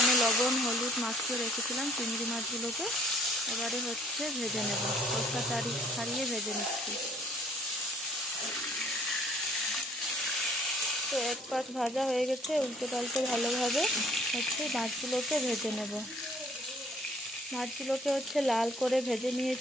লবণ হলুদ মাখিয়ে রেখেছিলাম চিংড়ি মাছগুলোকে, এবারে হচ্ছে ভেজে নেব। খোসা ছাড়িয়ে ভেজে নিচ্ছি। তো এক পাশ ভাজা হয়ে গেছে, উল্টে পাল্টে ভালোভাবে হচ্ছে মাছগুলোকে ভেজে নেব। মাছগুলোকে হচ্ছে লাল করে ভেজে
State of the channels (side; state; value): both; normal; correlation 0.58